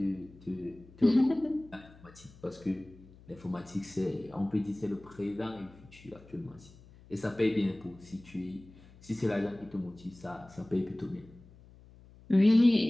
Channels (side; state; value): left; noise; hum, 23 dB below the sound